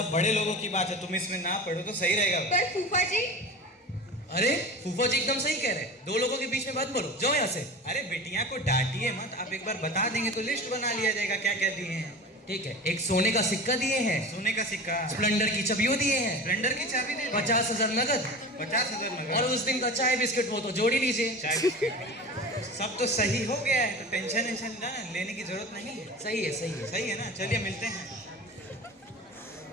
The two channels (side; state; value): both; normal; correlation 0.33